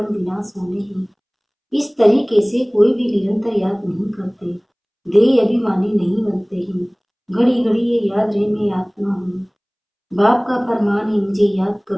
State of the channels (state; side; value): identical; both; correlation 1.00